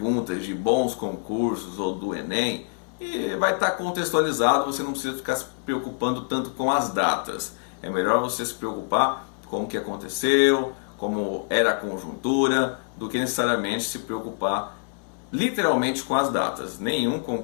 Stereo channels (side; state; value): right; silent; 61 dB below the other